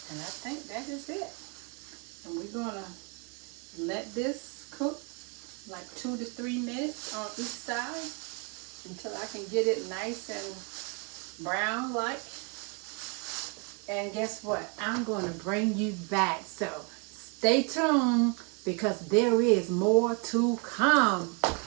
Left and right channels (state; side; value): quieter; left; 34.1 dB